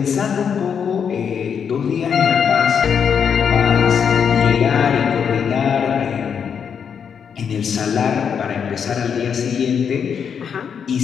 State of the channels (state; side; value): quieter; right; 7.2 dB